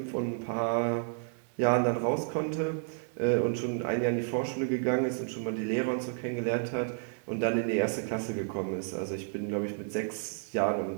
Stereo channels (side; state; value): left; silent; 57 dB below the other